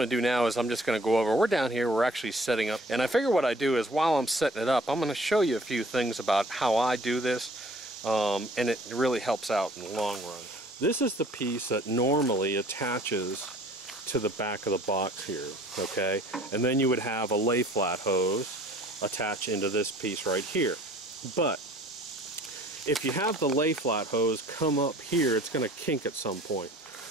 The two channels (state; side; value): normal; both; correlation 0.53